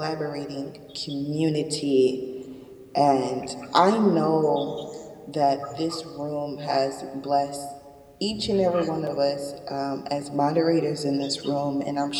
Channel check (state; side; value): identical; both; correlation 1.00